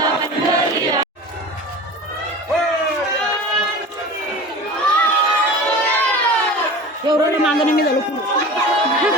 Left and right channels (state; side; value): normal; both; correlation 0.36